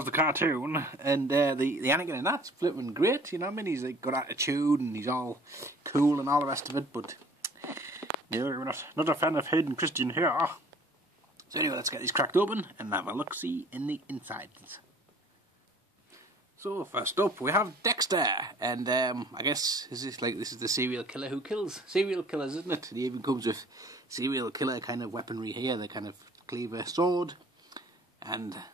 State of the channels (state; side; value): normal; both; correlation 0.51